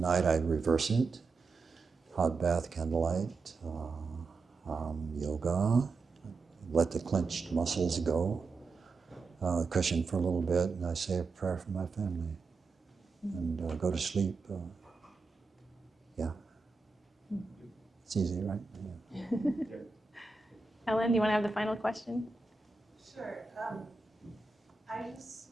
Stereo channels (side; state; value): left; quieter; 4.2 dB